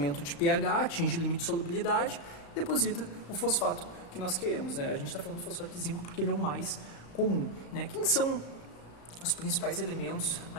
de pH, atinge o limite de solubilidade, deposita o fosfato que nós queremos, né? A gente está falando do fosfato de zinco porque ele é o mais comum, né? Quem são os principais elementos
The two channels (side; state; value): right; late; 35 ms